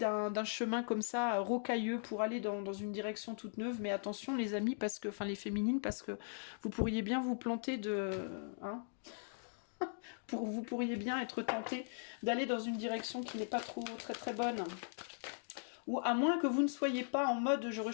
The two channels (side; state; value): right; silent; digital silence